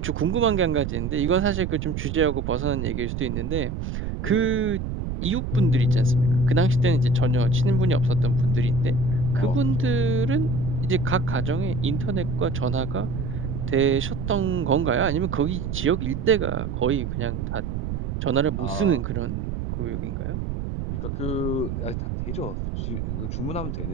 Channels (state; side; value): noise; right; rumble, 4 dB below the sound